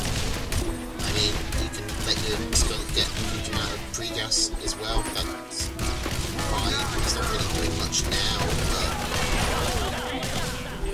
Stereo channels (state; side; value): identical; both; correlation 1.00